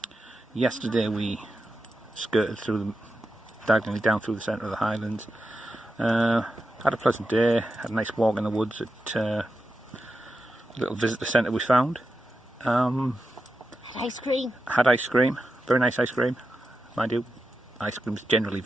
Yesterday we skirted through diagonally down through the centre of the Highlands. Had a pleasant day, had a nice walk in the woods at a little visitor centre we found. Had ice cream. Had ice cream, very nice ice cream, mind you. Ice cream's generally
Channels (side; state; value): both; normal; correlation 0.89